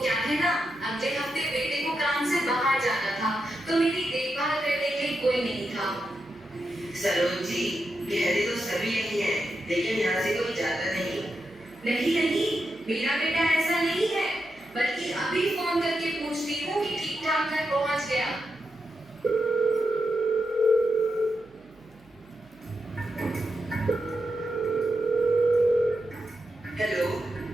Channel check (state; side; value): noise; right; hum, 29 dB below the sound